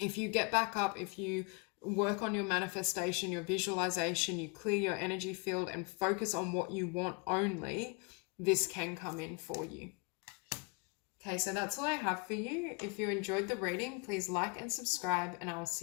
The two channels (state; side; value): quieter; right; 32.2 dB